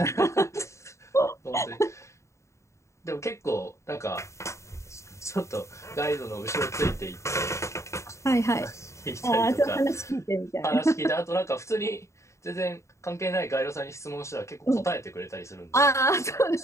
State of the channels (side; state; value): right; late; 0.14 ms